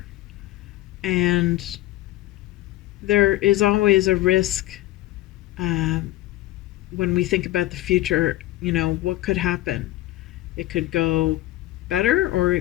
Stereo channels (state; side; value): quieter; right; 16.0 dB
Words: And there is always a risk when we think about the future. What could happen? It could go better or